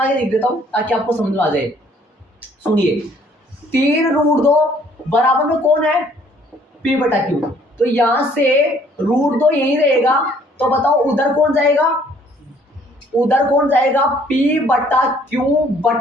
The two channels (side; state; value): both; normal; correlation 0.60